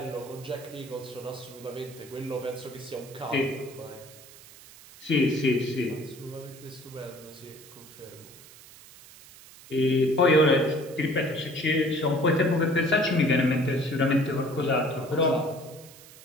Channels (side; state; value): right; noise; hiss, 20 dB below the sound